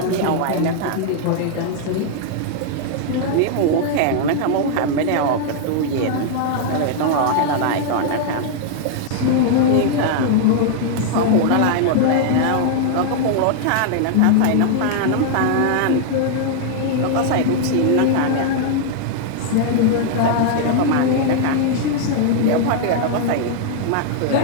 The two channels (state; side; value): different; both; correlation -0.01